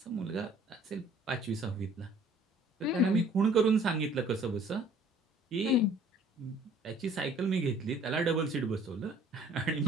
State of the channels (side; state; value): both; normal; correlation 0.56